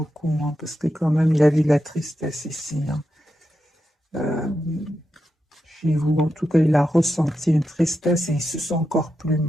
hein, parce que quand même il a vu de la tristesse ici. Hein. Euh, Chez vous, en tout cas, il a ressenti une tristesse et il se sent encore plus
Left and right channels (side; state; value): both; normal; correlation 0.87